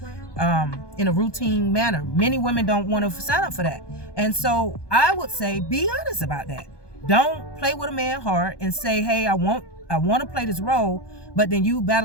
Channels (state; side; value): late; right; 1.2 ms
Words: in a routine manner. Many women don't want to sign up for that. And so I would say, be honest about that. Don't play with a man hard and say, hey, I want to play this role, but then you